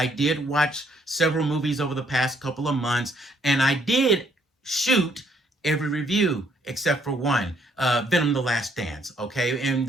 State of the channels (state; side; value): normal; both; correlation 0.68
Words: did watch several movies over the past couple of months, and I did shoot every review except for one, Venom: The Last Dance. Okay, and